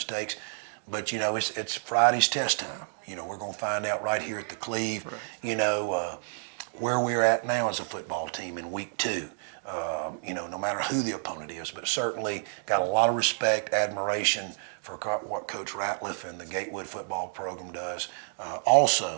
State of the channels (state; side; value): silent; left; digital silence